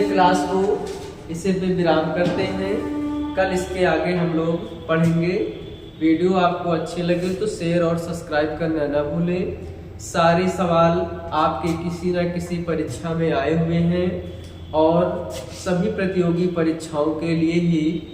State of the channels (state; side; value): identical; both; correlation 1.00